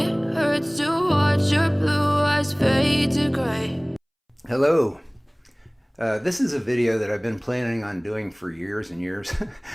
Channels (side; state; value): both; identical; correlation 1.00